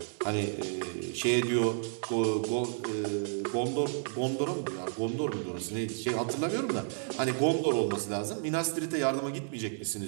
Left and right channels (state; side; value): silent; left; digital silence